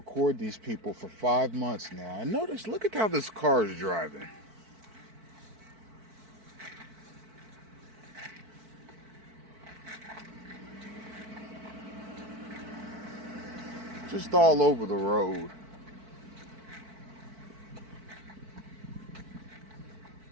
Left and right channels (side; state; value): left; late; 4.5 ms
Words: these people for 5 months now. And notice, look at how this car is driving. Just all over the road.